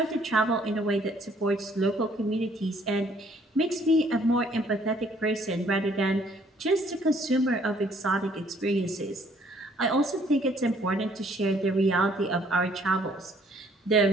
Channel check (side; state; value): both; normal; correlation 0.62